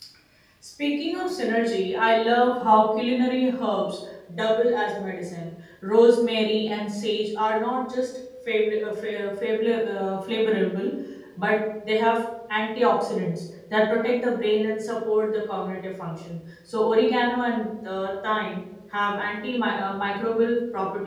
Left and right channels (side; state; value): both; identical; correlation 1.00